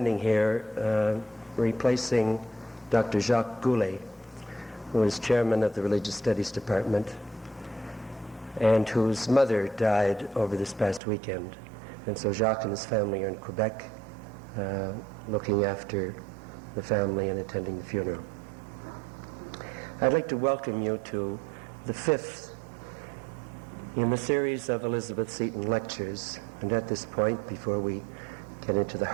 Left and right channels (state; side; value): drops out; left; at 11.0 s